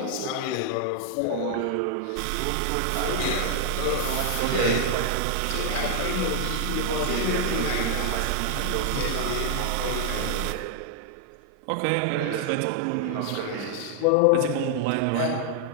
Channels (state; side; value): different; both; correlation -0.01